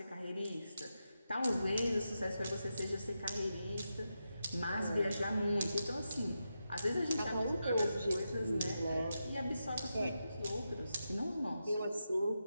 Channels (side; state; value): both; inverted; correlation -0.87